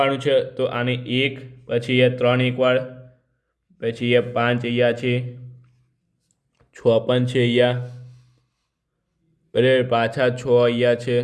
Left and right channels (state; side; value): identical; both; correlation 1.00